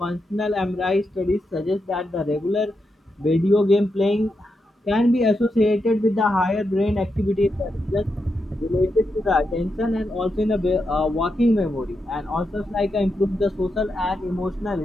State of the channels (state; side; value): normal; both; correlation 0.85